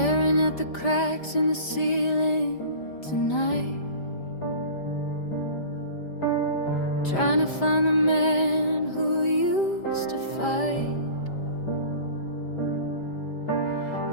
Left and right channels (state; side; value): late; right; 5.1 ms